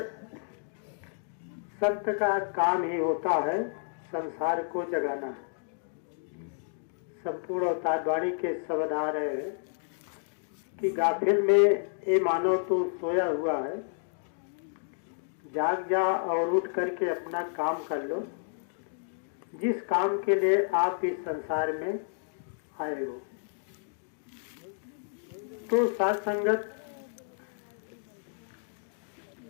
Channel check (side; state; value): right; silent; digital silence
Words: संत का काम ही होता है संसार को जगाना। संपूर्ण अवतारवाणी के शब्द आ रहे हैं कि गाफिल में ये मानव तो सोया हुआ है, जाग जा और उठ करके अपना काम कर लो, जिस काम के लिए आप इस संसार में आए हो। तो साथ संगत,